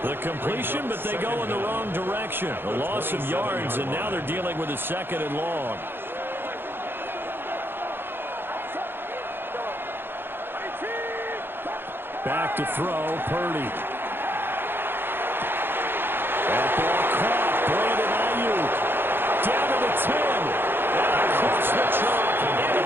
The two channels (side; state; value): left; late; 0.10 ms